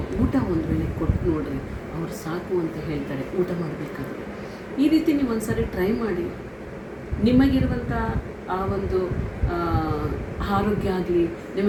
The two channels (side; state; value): both; identical; correlation 1.00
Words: ಊಟ ಒಂದು ವೇಳೆ ಕೊಟ್ಟು ನೋಡ್ರಿ, ಅವ್ರು ಸಾಕು ಅಂತ ಹೇಳ್ತಾರೆ ಊಟ ಮಾಡಬೇಕಾದ್ರೆ. ಈ ರೀತಿ ನೀವು ಒಂದು ಸಾರಿ ಟ್ರೈ ಮಾಡಿ. ನಿಮಗಿರುವಂಥ ಆ ಒಂದು ಆರೋಗ್ಯ ಆಗಲಿ,